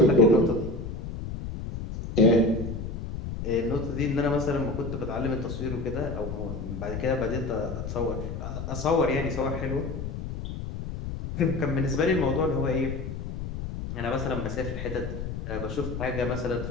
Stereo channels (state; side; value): noise; left; rumble, 6 dB below the sound